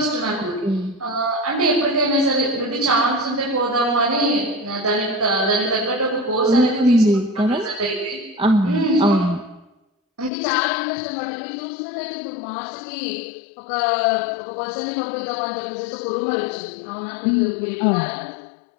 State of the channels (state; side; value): drops out; right; at 10.3 s